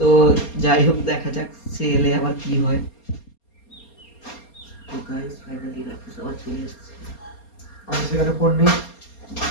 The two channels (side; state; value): right; late; 4.3 ms